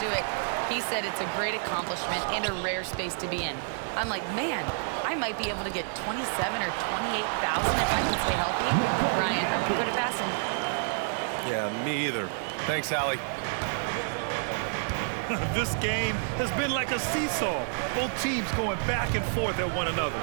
it. He said it's a great accomplishment and a rare space to be in. I'm like, man, I might be able to get 27 or 28,000 if I can stay healthy. Brian, I wouldn't put it past him. Yeah, me either. Thanks, Allie. This game has been like a seesaw. Both teams going back and forth at one another.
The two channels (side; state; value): left; silent; digital silence